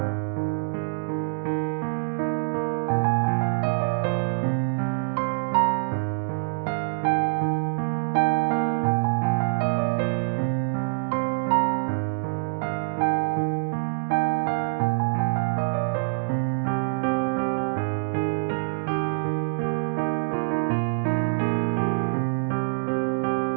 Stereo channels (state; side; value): silent; left; 61 dB below the other